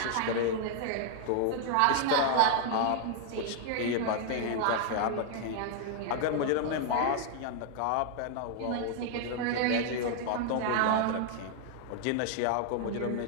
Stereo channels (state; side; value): different; both; correlation 0.00